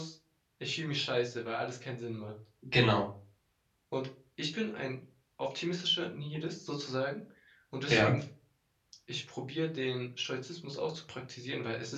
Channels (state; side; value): identical; both; correlation 1.00